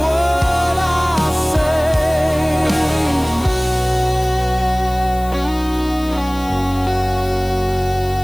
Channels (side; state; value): left; noise; hiss, 19 dB below the sound